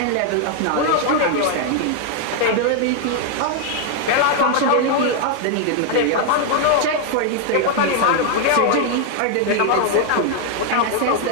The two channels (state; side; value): different; both; correlation 0.00